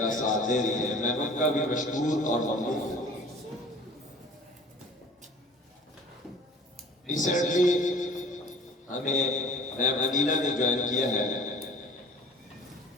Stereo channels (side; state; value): both; normal; correlation 0.46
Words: ساتھ دے رہی ہے۔ میں ان کا بھی مشکور اور ممنون ہوں۔ ریسنٹلی ہمیں میم انیلا نے جوائن کیا ہے،